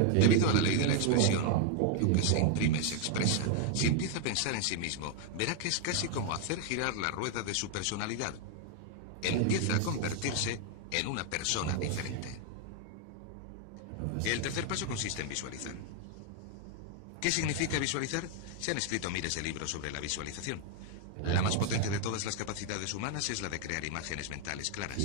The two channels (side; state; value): both; different; correlation 0.00